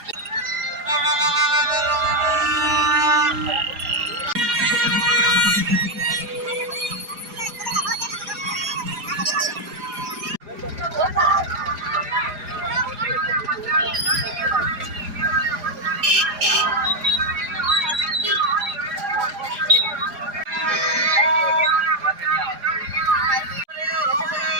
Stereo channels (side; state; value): left; late; 4.9 ms